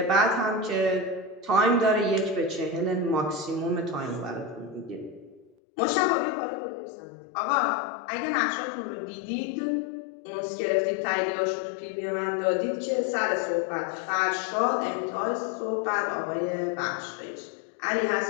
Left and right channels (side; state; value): right; drops out; at 5.6 s